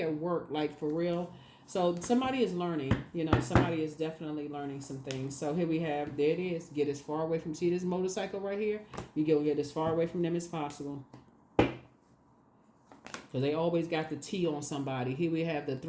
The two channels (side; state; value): both; identical; correlation 1.00